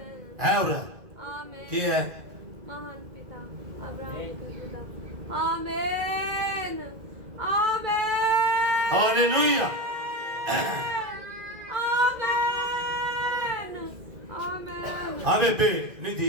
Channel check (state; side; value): late; left; 2.0 ms